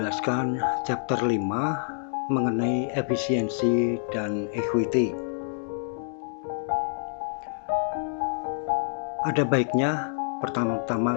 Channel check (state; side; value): silent; right; digital silence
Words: chapter 5 mengenai efisiensi dan equity. Ada baiknya pertama-tama